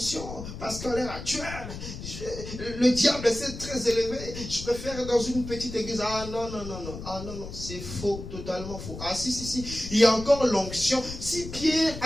parce qu'à l'heure actuelle, le diable est très élevé, je préfère dans une petite église. Ah non, c'est faux, totalement faux. Ah si, il y a encore l'onction. Si Pierre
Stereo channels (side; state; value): left; noise; rumble, 10 dB below the sound